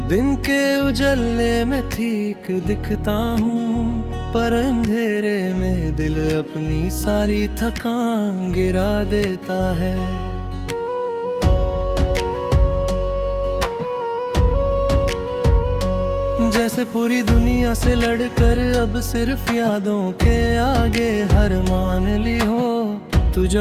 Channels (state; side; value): identical; both; correlation 1.00